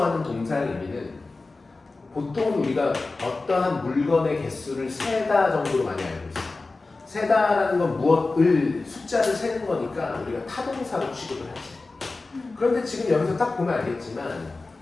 하는 동사의 의미는 보통 우리가 어떠한 물건의 개수를 세다 정도로 많이 알고 있어요. 세다라는 건 무엇을 숫자를 세는 거니까 우리가 타동사로 취급을 하지. 그런데 지금 여기서 딱 보면 알겠지만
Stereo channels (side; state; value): right; quieter; 3.5 dB